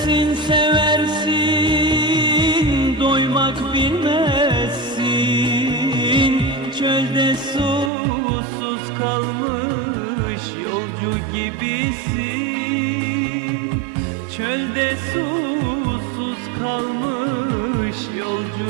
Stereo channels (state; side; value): drops out; left; at 7.9 s